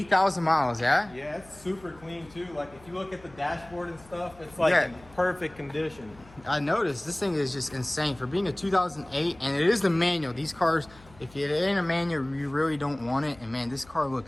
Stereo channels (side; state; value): left; noise; hum, 24 dB below the sound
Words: miles, yeah? Yeah, it's super clean too. Like if you look at the dashboard and stuff, it's like in perfect condition. I noticed this thing is just insane for being a 2008, and it is the manual. These cars, if it ain't a manual, you really don't want it. And man, this car